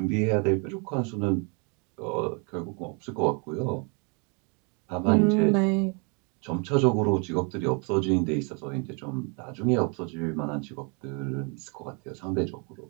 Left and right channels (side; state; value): left; quieter; 34.5 dB